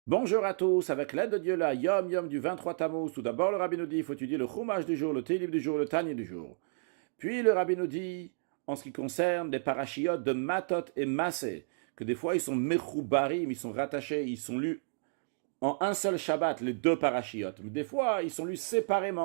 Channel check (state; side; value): silent; left; digital silence